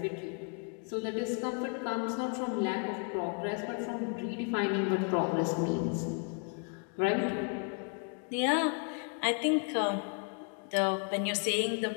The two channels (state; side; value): quieter; right; 39.8 dB